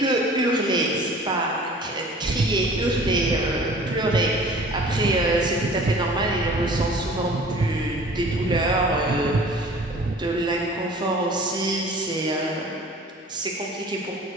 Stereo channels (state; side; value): normal; both; correlation 0.46